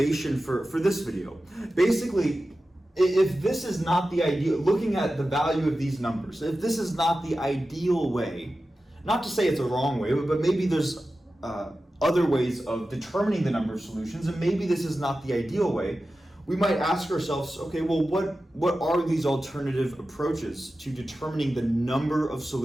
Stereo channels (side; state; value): both; normal; correlation 0.94